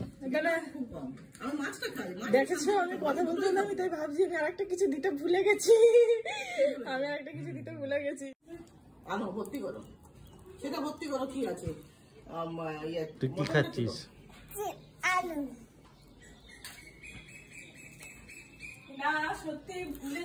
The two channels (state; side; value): identical; both; correlation 1.00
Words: তাহলে খুব কম। আমি মাছটা খাই। দেখেছো আমি কথা বলতে হলাম, আমি তাই ভাবছি আমি আরেকটা কিছু দিতে ভুলে গেছি। আনো ভর্তি করো, সেটা ভর্তি করো, কি আছে? তুই কি খাচ্ছিস? আলু না সত্যি ভুলে